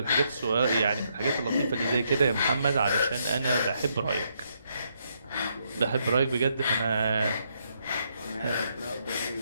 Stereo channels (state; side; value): inverted; both; correlation -0.76